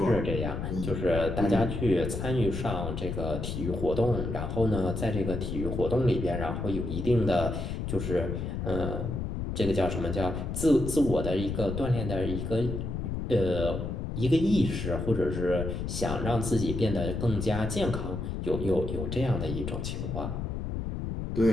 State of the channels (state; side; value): noise; left; rumble, 4 dB below the sound